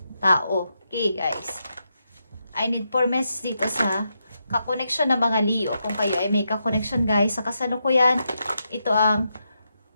tao. Okay guys, I need 4 messages dito sa kakoneksyon ng mga Leo. Kung kayo ay may kakoneksyon guys, sa kasalukuyan, ito ang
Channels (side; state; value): both; inverted; correlation -0.84